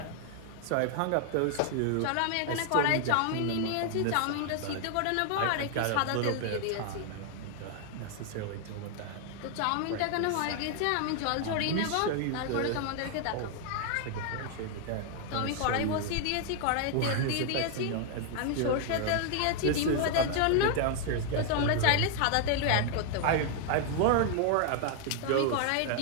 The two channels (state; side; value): different; both; correlation 0.00